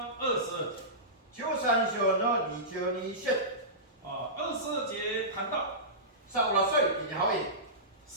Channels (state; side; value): normal; both; correlation -0.19